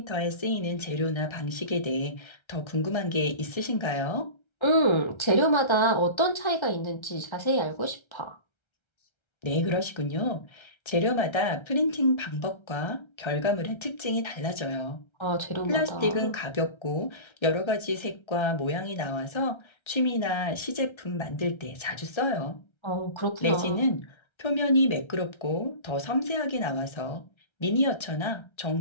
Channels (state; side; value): late; right; 1.3 ms